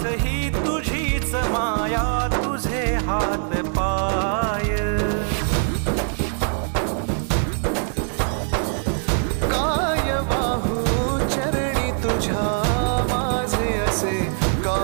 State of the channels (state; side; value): silent; left; 64 dB below the other